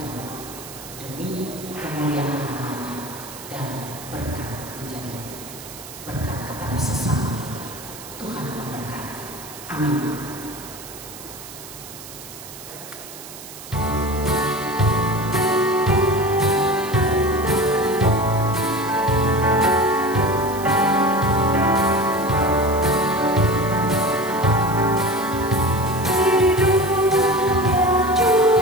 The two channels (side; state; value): right; noise; hiss, 14 dB below the sound